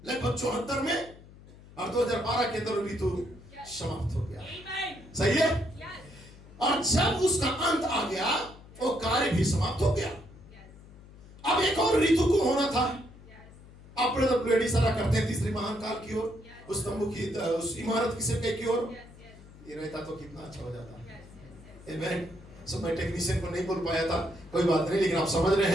लगभग 74 में, और 2012 के अंदर ऋतु समाप्त हो गया। सही है? और जब उसका अंत आ गया, वो कार्य भी समाप्त हो गया। अब एक और ऋतु को होना था। अब ब्रदर ब्लेड इशारा करते हैं तीसरी महान काल की ओर, उस तंबू की, उस इमारत की सिरके की ओर। ये रहता तो कितना अच्छा हो जाता। आमेन। सो मैं टेक्नीशियन को नहीं बोल पाया था, कोई बात नहीं, लेकिन आप समझ रहे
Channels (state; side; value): noise; left; hum, 20 dB below the sound